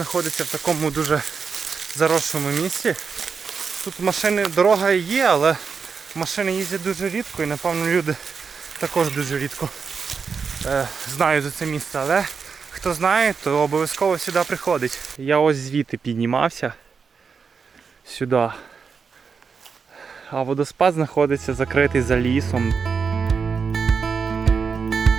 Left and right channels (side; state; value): left; quieter; 5.7 dB